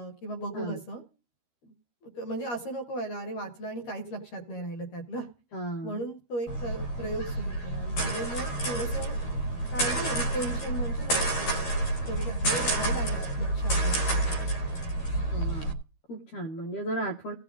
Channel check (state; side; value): late; right; 13 ms